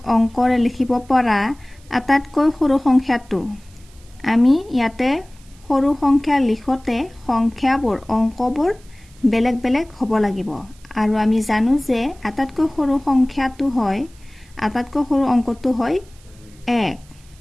অংকৰে লিখিব পৰা আটাইতকৈ সৰু সংখ্যাটো। আমি ইয়াতে সৰু সংখ্যা লিখোতে সংখ্যাবোৰ অংকবোৰ বেলেগ বেলেগ হ'ব লাগিব আৰু আমি জানো যে আটাইতকৈ সৰু সংখ্যাটো হয়, আটাইতকৈ সৰু অংকটো হয় 1।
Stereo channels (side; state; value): right; noise; hiss, 28 dB below the sound